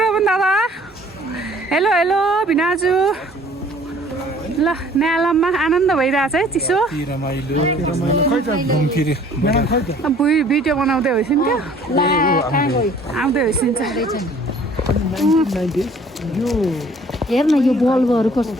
रोबन दादा हेलो भिनाजु ल न्यालममा आनन्द भइरहेछ है चिसो भिडियो बनाउँदै होइसिन्थ्यो आउँदै होइसिन्छ हेर्न यो बल्बहरू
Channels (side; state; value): both; normal; correlation 0.54